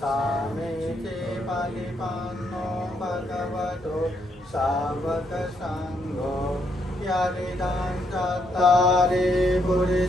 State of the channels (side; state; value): both; normal; correlation 0.75